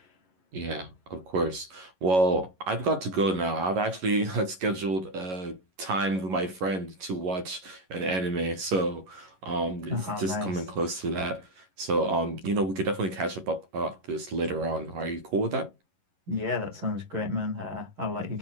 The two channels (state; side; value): late; left; 11 ms